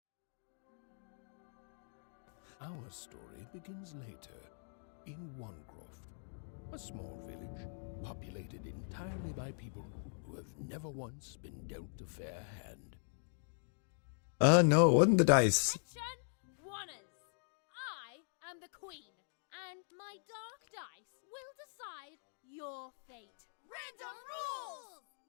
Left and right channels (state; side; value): silent; right; digital silence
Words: Our story begins later, in Onecroft, a small village populated entirely by people who have never once been dealt a fair hand. No, it wasn't the dice. Wanners. I am the queen, and my dark dice will decide your fate. Random rules!